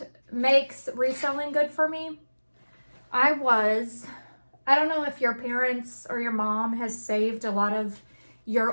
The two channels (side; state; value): both; inverted; correlation -1.00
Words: makes reselling good for me, I don't know if your parents or your mom has saved a lot of your